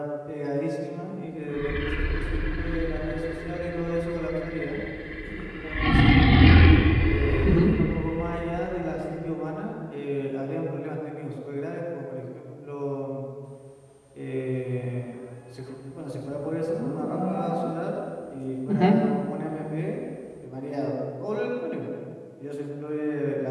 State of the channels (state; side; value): identical; both; correlation 1.00